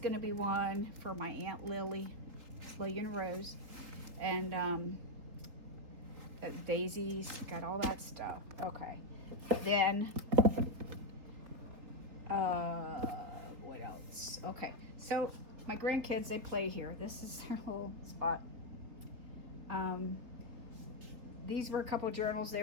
to be one for my Aunt Lily and Rose, and daisies, got all that stuff. Okay, then what else? Okay, so my grandkids, they play here. This is their little spot. These were a couple journals they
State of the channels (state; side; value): late; left; 3.8 ms